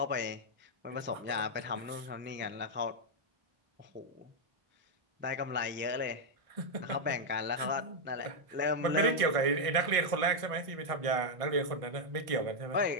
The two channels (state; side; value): late; left; 1.5 ms